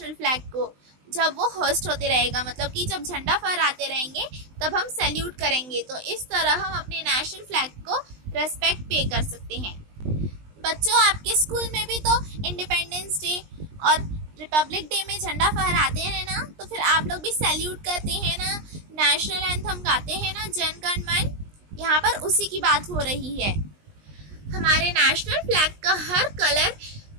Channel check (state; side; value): late; left; 20 ms